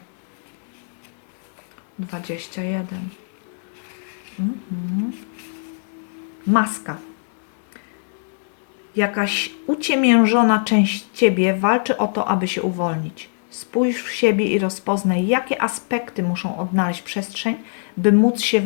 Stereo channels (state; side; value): silent; right; digital silence